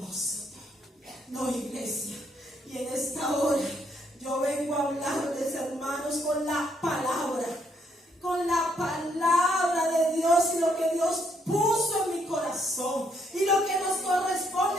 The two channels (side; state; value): both; normal; correlation 0.72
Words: No, iglesia, y en esta hora yo vengo a hablarles, hermanos, con la palabra de Dios y lo que Dios puso en mi corazón y lo que nos